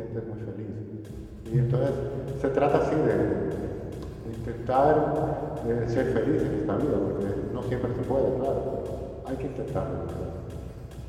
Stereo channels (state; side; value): identical; both; correlation 1.00